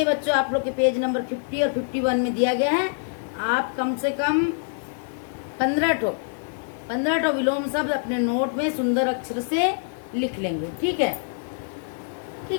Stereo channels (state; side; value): silent; right; digital silence